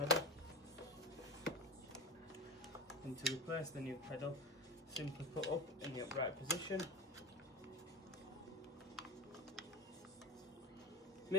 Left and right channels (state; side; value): normal; both; correlation 0.24